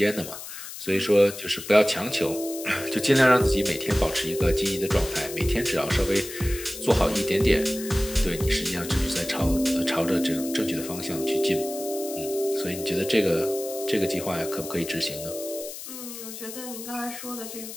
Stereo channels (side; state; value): left; noise; hiss, 11 dB below the sound